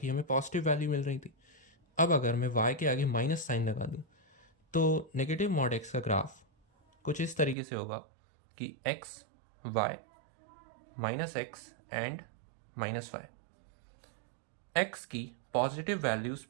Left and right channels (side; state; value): left; drops out; at 7.6 s